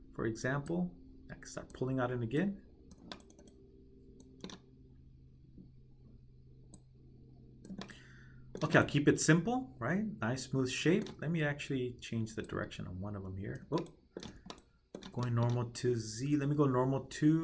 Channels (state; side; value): identical; both; correlation 1.00